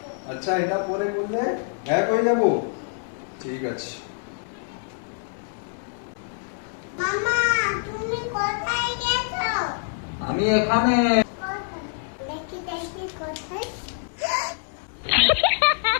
আচ্ছা এটা পরে করলে এক হয়ে যাবো। ঠিক আছে। মামা তুমি কোথায় গেছো? আমি এখানে। দেখি দেখি কোথায়?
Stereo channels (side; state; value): right; silent; 61 dB below the other